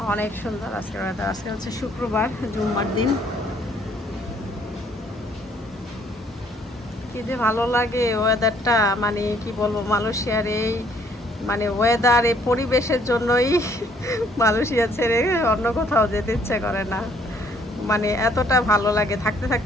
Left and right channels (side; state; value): both; normal; correlation 0.63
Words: অনেক সুন্দর। আজকের ওয়েদার, আজকে শুক্রবার, জুম্মার দিন। কি যে ভালো লাগে ওয়েদারটা, মানে কি বলবো, মালয়েশিয়ার এই মানে ওয়েদার, এই পরিবেশের জন্যই মালয়েশিয়া ছেড়ে অন্য কোথাও যেতে ইচ্ছে করে না। মানে এতটা ভালো লাগে থাকতে